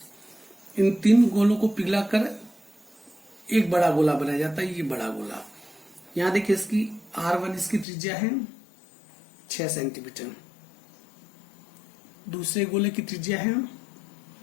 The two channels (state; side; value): drops out; right; at 7.9 s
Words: इन 3 गोलों को पिघलाकर एक बड़ा गोला बनाया जाता है, ये बड़ा गोला। यहां देखिए इसकी R1 इसकी त्रिज्या है 6 सेंटीमीटर, दूसरे गोले की त्रिज्या है